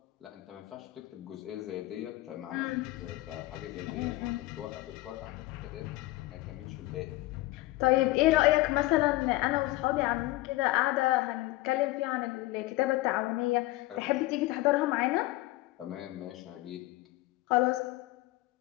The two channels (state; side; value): quieter; right; 19.0 dB